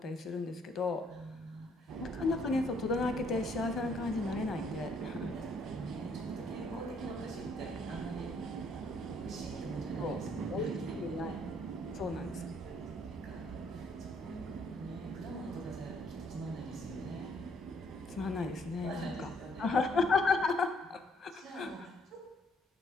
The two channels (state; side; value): normal; both; correlation 0.66